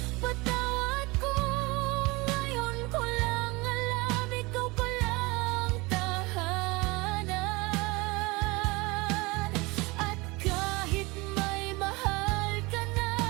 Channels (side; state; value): left; quieter; 24.0 dB